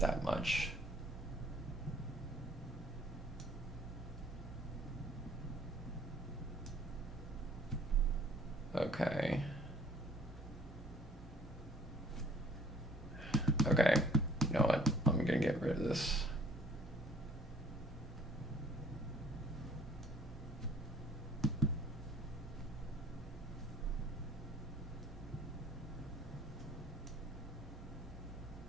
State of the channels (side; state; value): both; normal; correlation 0.57